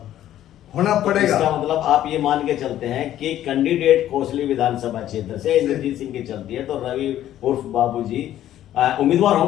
होना पड़ेगा। इसका मतलब आप ये मान के चलते हैं कि कैंडिडेट कोसली विधानसभा क्षेत्र से इंद्रजीत सिंह की चलती है तो रवि उर्फ बाबूजी उम्मीदवार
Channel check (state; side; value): quieter; right; 12.3 dB